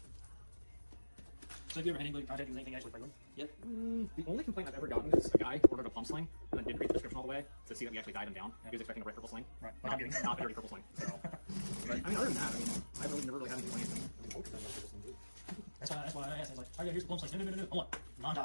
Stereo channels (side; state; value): both; inverted; correlation -1.00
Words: So have you ever had anybody contact you with anything actually flagrant yet? The only complaint I've ever gotten is a guy ordered a pump sling and then didn't read the description all the way to see that we actually died him down. He was expecting a red purple sling. Right. Not, not a dirty purple sling. So, but I mean, other than that, I mean, I've really never really had any complaints. That's why I asked. I was like, oh yeah, here's the plum slice. No. Hold on.